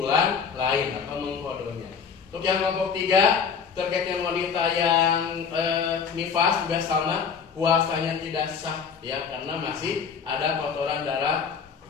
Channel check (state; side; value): quieter; right; 6.3 dB